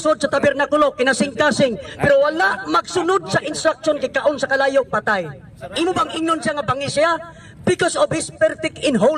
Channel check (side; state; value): both; identical; correlation 1.00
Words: sa tabernakulo, kinasing-kasing, pero wala magsunod sa instruction kikaon sa kalayo, patay. Imo bang ingnon siya nga bangis siya? Because of his perfect in